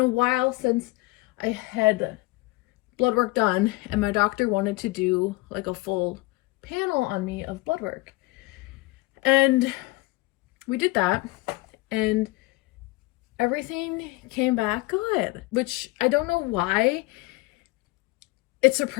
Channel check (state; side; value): quieter; right; 21.7 dB